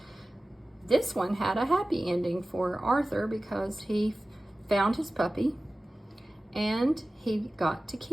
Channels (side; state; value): both; normal; correlation 0.96